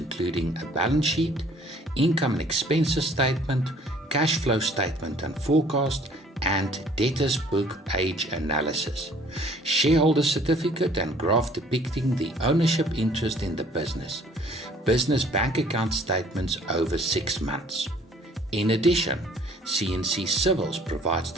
a balance sheet, income and expenses statement, cash flow statement and forecast, and debtors book age analysis. Shareholder certificate and graph depicting the ownership interest in the business. Business bank account statements over 6 months. In addition, CNC Civils provides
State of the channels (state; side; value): normal; both; correlation 0.56